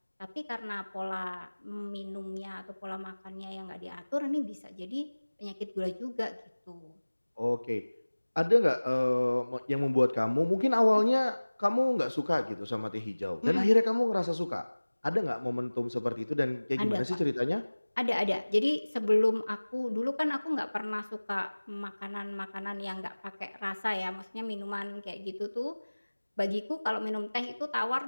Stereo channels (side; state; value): both; inverted; correlation -1.00